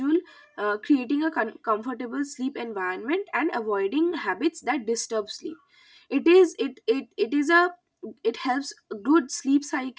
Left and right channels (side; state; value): both; identical; correlation 1.00